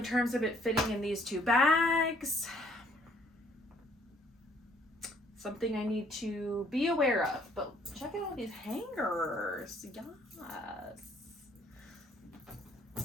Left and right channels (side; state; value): both; normal; correlation 0.63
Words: terms of it fitting in these 2 bags, something I need to be aware of. But check out all these hangers. Yes.